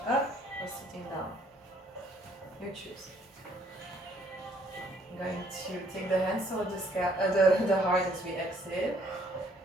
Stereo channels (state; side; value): normal; both; correlation 0.64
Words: up or sitting down. You choose. I'm going to take the hands toward the heart as we exhale.